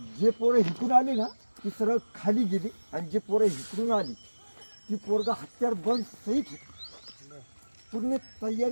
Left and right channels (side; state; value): both; inverted; correlation -1.00